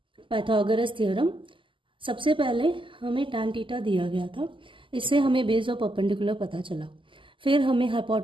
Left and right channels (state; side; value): late; left; 0.25 ms